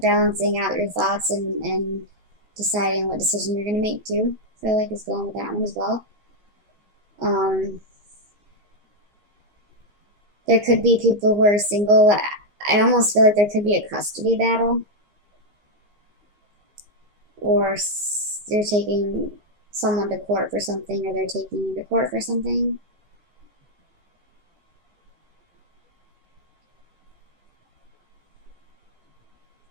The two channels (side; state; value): left; late; 14 ms